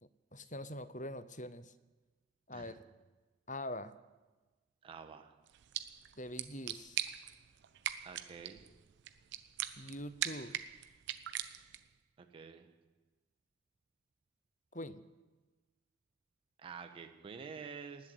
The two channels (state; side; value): quieter; left; 5.5 dB